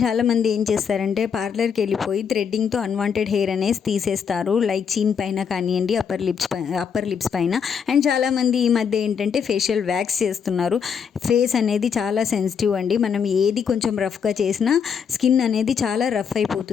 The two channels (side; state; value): right; quieter; 6.9 dB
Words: చాలామంది ఏం చేస్తారంటే పార్లర్కి వెళ్ళిపోయి థ్రెడ్డింగ్తో అన్వాంటెడ్ హెయిర్ అనేది తీసేస్తారు, లైక్ చీన్ పైన కానివ్వండి, అప్పర్ లిప్స్ పైన. అండ్ చాలామంది ఈ మధ్య ఏంటంటే ఫేషియల్ వ్యాక్స్ చేస్తున్నారు. ఫేస్ అనేది చాలా సెన్సిటివ్ అండి. మనం ఏది కొంచెం రఫ్గా చేసినా స్కిన్ అనేది చాలా రఫ్